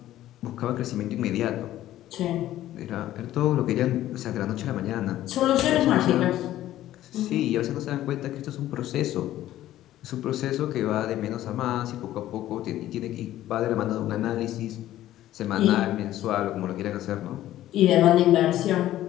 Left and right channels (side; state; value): right; quieter; 13.7 dB